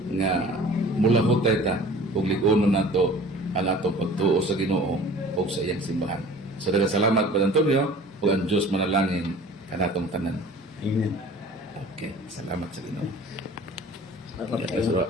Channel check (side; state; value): both; normal; correlation 0.45